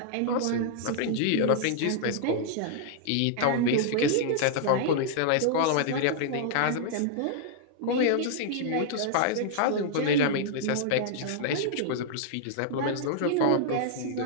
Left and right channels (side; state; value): both; different; correlation -0.01